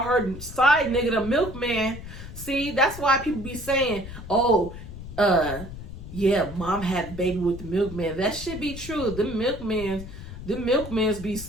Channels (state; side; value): noise; left; rumble, 12 dB below the sound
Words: her side nigga the milkman. See, that's why people be saying, oh, yeah, mom had a baby with the milkman. That should be true. The milkmans be